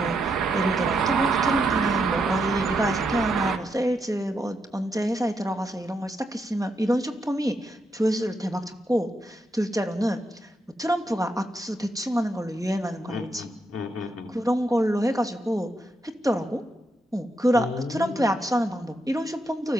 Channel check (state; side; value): normal; both; correlation 0.81